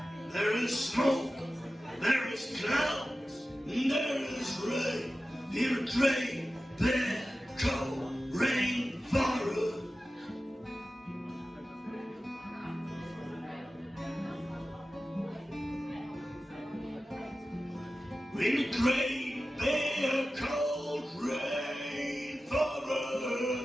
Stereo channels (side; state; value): both; normal; correlation 0.94